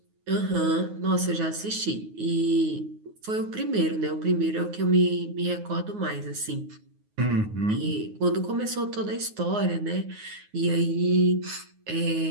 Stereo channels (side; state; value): left; late; 9.5 ms